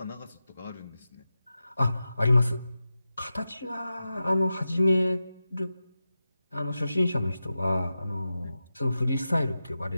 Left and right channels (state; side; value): inverted; both; correlation -0.93